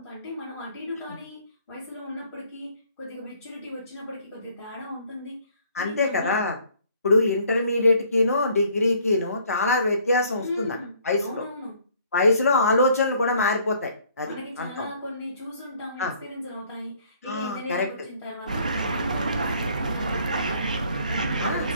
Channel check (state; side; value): inverted; both; correlation -0.61